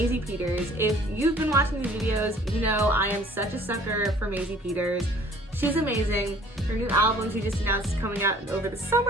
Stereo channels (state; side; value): normal; both; correlation 0.54